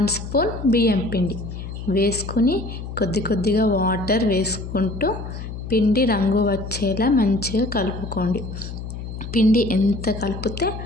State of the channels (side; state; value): left; noise; hum, 8 dB below the sound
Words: స్పూన్ బియ్యం పిండి వేసుకుని కొద్దిగా వాటర్ వేసుకుంటూ పిండి రంగు వచ్చేలా మంచిగా కలుపుకోండి. పిండి ఎంత కలిపితే